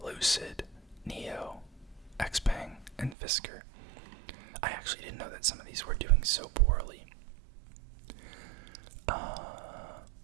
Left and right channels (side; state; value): left; drops out; at 3.2 s